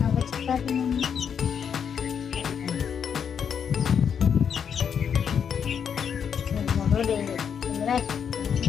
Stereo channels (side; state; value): right; quieter; 7.5 dB